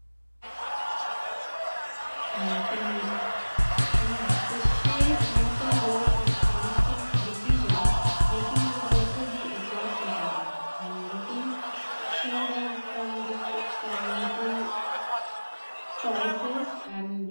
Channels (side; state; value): both; inverted; correlation -1.00